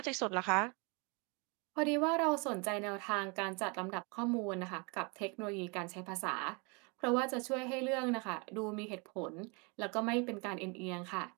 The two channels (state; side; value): quieter; left; 31.2 dB